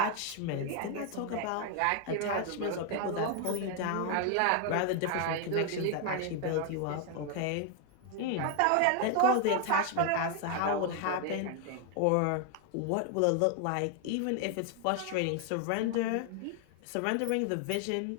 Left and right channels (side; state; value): both; different; correlation 0.01